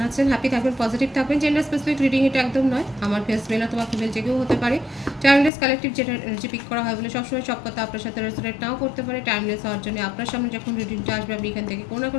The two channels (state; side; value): drops out; right; at 5.5 s